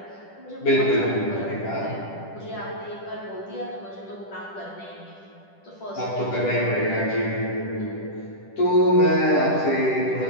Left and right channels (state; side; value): late; right; 10 ms